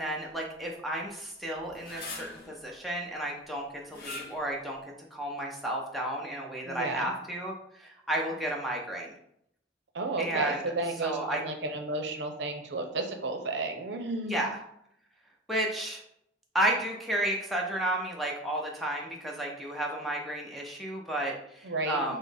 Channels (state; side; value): normal; both; correlation 0.25